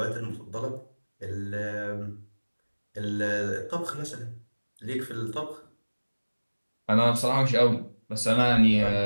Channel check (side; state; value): both; inverted; correlation -1.00